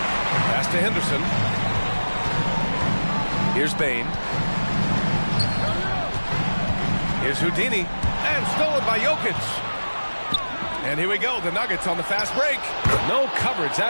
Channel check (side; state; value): both; inverted; correlation -1.00